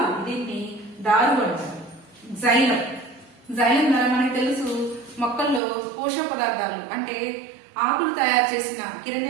దీన్ని దారు అంటారు. జైలం ద్వారా మనకు తెలుసు మొక్కల్లో పోషక పదార్థాలు అంటే ఆకులు తయారు చేసిన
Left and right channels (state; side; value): drops out; left; at 5.6 s